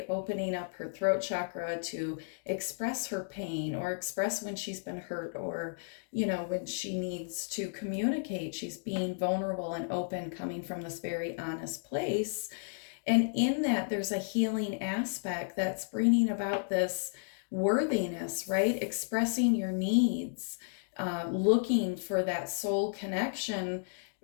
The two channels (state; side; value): silent; right; digital silence